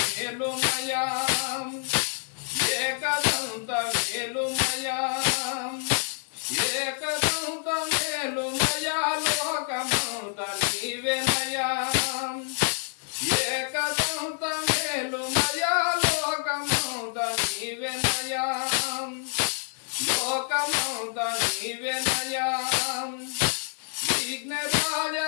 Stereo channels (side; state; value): right; silent; 60 dB below the other